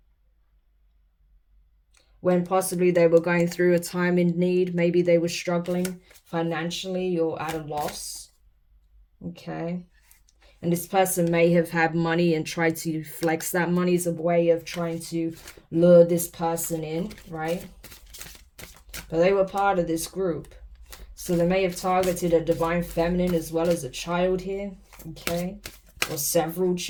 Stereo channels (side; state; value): both; identical; correlation 1.00